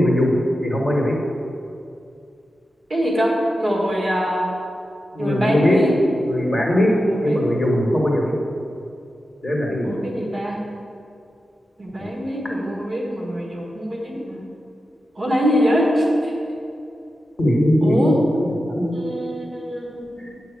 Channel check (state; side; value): normal; both; correlation 0.91